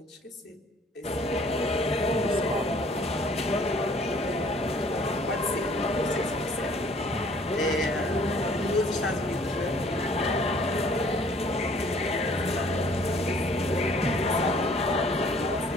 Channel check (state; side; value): normal; both; correlation 0.57